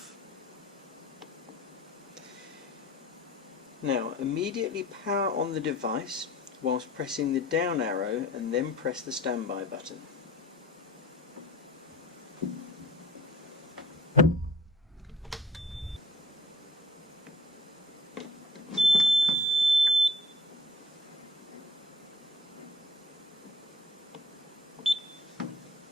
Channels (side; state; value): both; normal; correlation 0.50